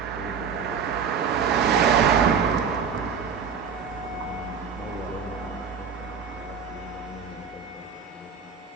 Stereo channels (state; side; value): quieter; left; 6.5 dB